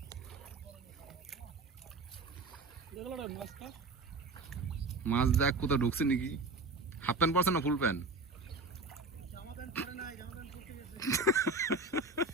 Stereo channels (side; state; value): left; quieter; 3.5 dB